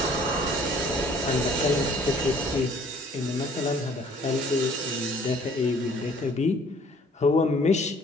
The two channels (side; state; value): both; normal; correlation 0.56